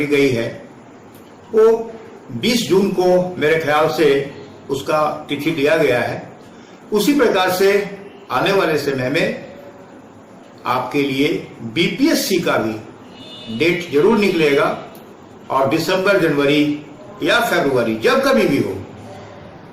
गई है वो 20 जून को मेरे ख्याल से उसका तिथि दिया गया है। उसी प्रकार से आने वाले समय में आपके लिए बीपीएससी का भी डेट जरूर निकलेगा और दिसंबर, जनवरी या फरवरी जब कभी भी हो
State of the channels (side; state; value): both; identical; correlation 1.00